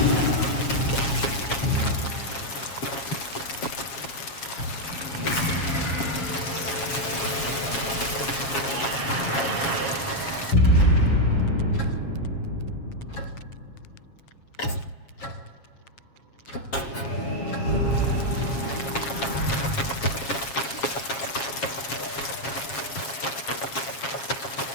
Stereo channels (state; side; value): late; right; 7.3 ms